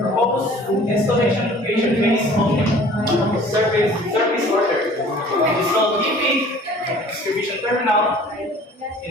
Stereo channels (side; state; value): both; normal; correlation 0.49